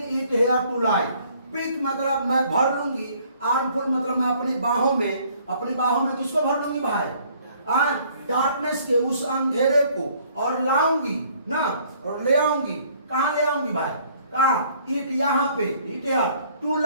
it here to light, pick मतलब मैं भर लूंगी, आर्मफुल मतलब मैं अपनी बाहों में किसको भर लूंगी भाई? डार्कनेस के उस अंधेरे को, और लाऊंगी ना, और ले आऊंगी। कहां ले आऊंगी भाई? कहां? इट, यहाँ पे, इट यार, टू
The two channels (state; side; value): inverted; both; correlation -0.60